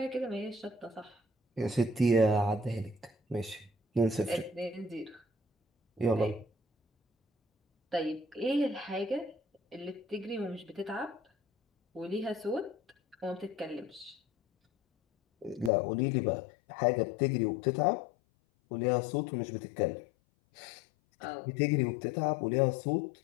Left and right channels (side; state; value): right; drops out; at 15.7 s